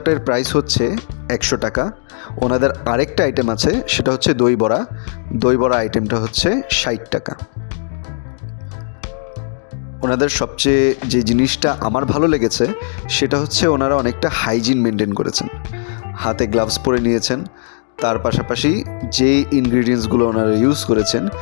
প্রাইস হচ্ছে 100 টাকা। ওনাদের আরেকটা আইটেম আছে, সেটা হচ্ছে দই বড়া। দই বড়া আইটেমটা হচ্ছে 60 টাকা। ওনাদের সবচেয়ে যে জিনিসটা আমার ভালো লেগেছে সেটা হচ্ছে ওনারা অনেকটা হাইজিন মেনটেন করেছেন। হাতে গ্লাভস পরে নিয়েছেন, তার পাশাপাশি যে ইনগ্রিডিয়েন্টসগুলো ওনারা ইউজ করেছেন,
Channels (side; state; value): right; silent; digital silence